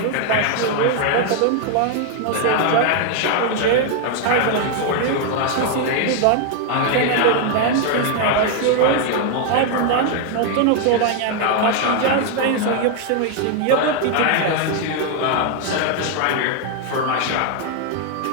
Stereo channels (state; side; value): different; both; correlation 0.00